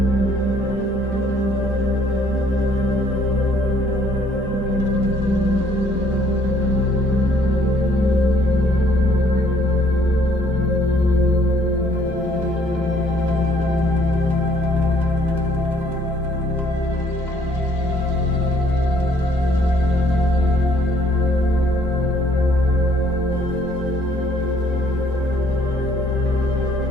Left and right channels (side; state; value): both; normal; correlation 0.62